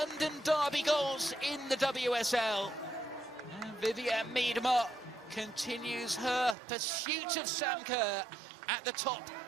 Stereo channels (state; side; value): drops out; left; at 6.6 s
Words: derby goals in the WSL. And Vivianne Miedemar continues her pursuit of Sam Kerr at the top